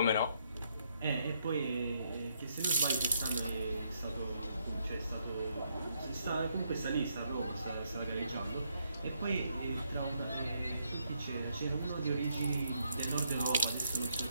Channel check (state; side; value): inverted; both; correlation -0.75